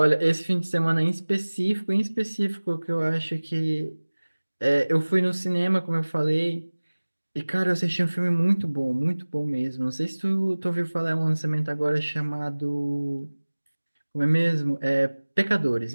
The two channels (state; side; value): inverted; both; correlation -1.00